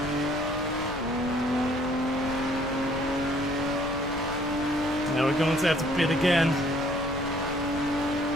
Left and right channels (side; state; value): left; noise; rumble, 14 dB below the sound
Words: Now we're going to have to pit again.